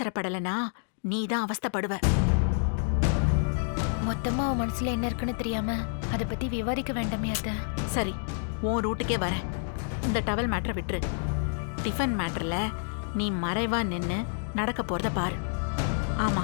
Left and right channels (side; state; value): right; silent; digital silence